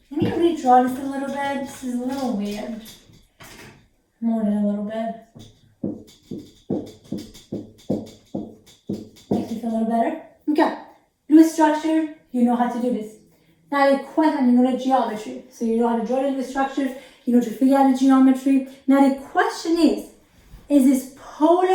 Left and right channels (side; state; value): both; identical; correlation 1.00